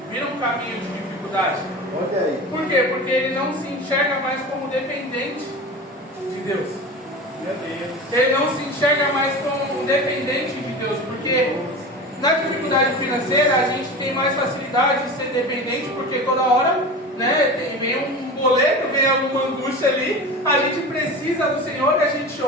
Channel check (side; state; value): both; normal; correlation 0.31